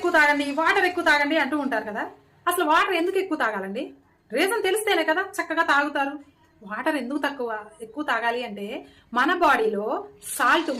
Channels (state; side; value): identical; both; correlation 1.00